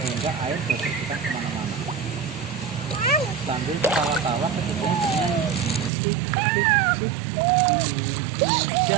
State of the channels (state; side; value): drops out; left; at 5.9 s